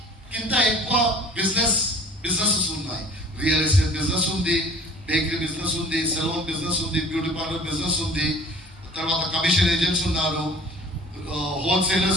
కింద ఎక్కువ బిజినెసెస్ ఉన్నాయి. రియల్ ఎస్టేట్ బిజినెస్ ఉంది, బేకరీ బిజినెస్ ఉంది, సెలూన్ బిజినెస్ ఉంది, బ్యూటీ పార్లర్ బిజినెస్ ఉంది, తర్వాత కమిషన్ ఏజెంట్స్ ఉన్నారు,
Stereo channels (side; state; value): both; normal; correlation 0.47